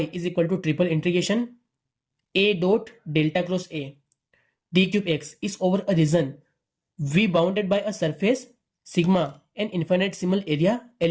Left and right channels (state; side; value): identical; both; correlation 1.00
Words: is equal to triple integration A dot delta cross A D cube x is over a region V bounded by a surface sigma an infinitesimal area